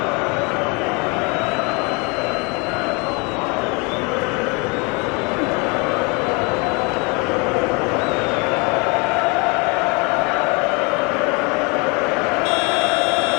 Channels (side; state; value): right; quieter; 30.3 dB